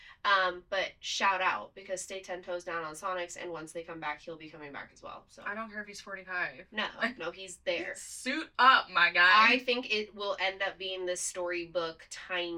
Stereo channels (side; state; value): both; identical; correlation 1.00